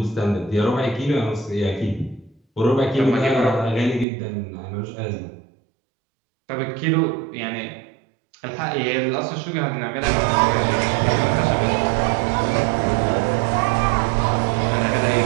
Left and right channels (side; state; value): left; drops out; at 4.0 s